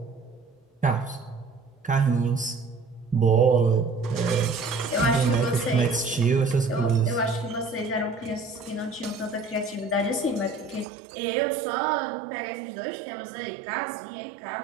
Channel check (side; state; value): left; drops out; at 10.9 s